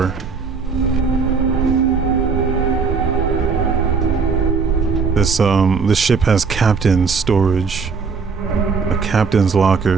this. This ship has captain's storage, a captain's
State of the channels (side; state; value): left; quieter; 5.2 dB